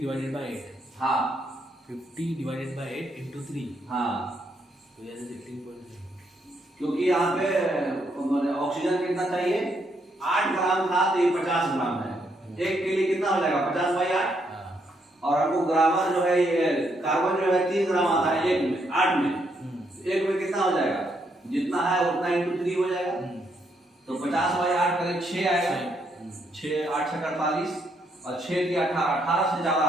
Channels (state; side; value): normal; both; correlation 0.75